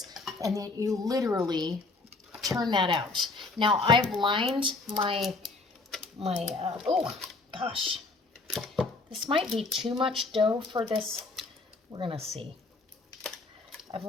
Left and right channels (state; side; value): quieter; right; 3.5 dB